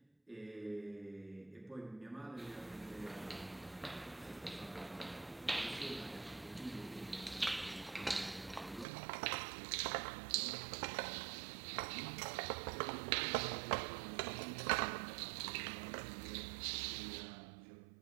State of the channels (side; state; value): left; drops out; at 8.8 s